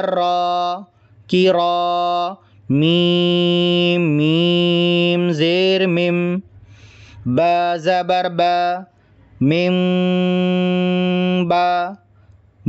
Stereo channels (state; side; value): identical; both; correlation 1.00